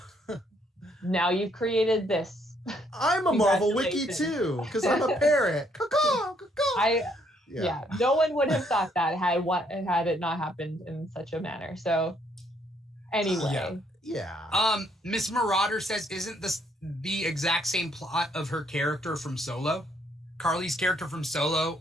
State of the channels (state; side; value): normal; both; correlation 0.69